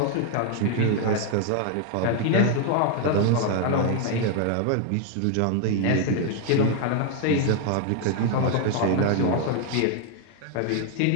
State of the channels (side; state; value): both; different; correlation 0.00